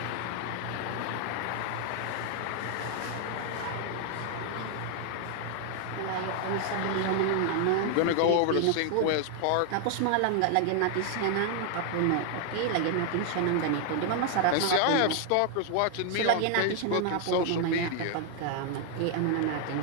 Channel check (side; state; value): both; different; correlation 0.00